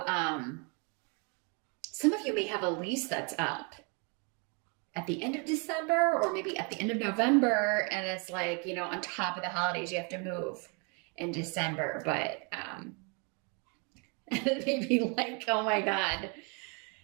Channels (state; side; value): quieter; left; 34.4 dB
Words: some of you may have a lease that's up at the end of December, or maybe at the end of November. And it's like, on top of the holidays, you have to move in December, but, maybe like, oh my God,